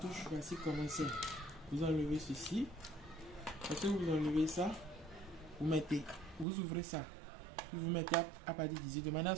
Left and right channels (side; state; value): left; drops out; at 6.5 s